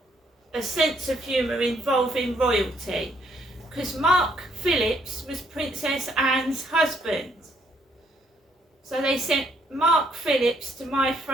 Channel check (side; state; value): both; normal; correlation 0.69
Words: a sense of humour involving royalty. Because Mark Phillips was Princess Anne's husband. So they sent Mark Phillips to my